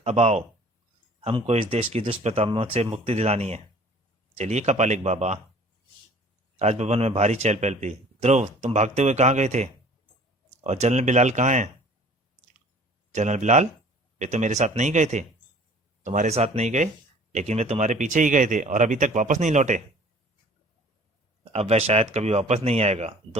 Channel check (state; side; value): normal; both; correlation 0.50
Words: अब आओ, हमको इस देश की दुष्प्रताओं से मुक्ति दिलानी है। चलिए कपालिक बाबा। राजभवन में भारी चहल पहल थी। ध्रुव, तुम भागते हुए कहाँ गए थे? और जनरल बिलाल कहाँ हैं? जनरल बिलाल, वे तो मेरे साथ नहीं गए थे। तुम्हारे साथ नहीं गए, लेकिन वे तुम्हारे पीछे ही गए थे और अभी तक वापस नहीं लौटे। अब वह शायद कभी वापस नहीं आएगा।